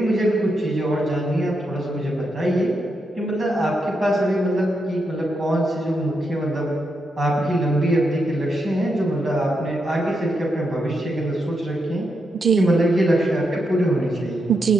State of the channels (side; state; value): both; normal; correlation 0.83